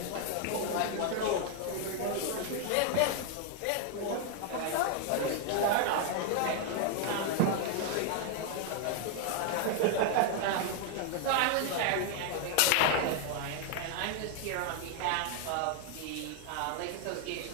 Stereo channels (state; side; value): different; both; correlation 0.00